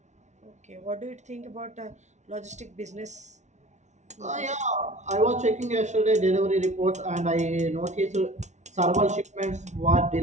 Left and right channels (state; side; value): late; left; 0.33 ms